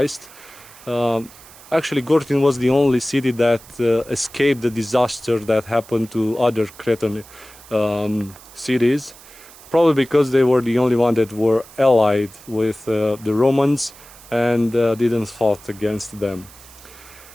actually Gortyn was the only city that escaped the disaster that happened to other Cretan cities, probably because they were the only one that were allied with the Romans and didn't fight against them.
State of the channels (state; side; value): noise; right; hiss, 21 dB below the sound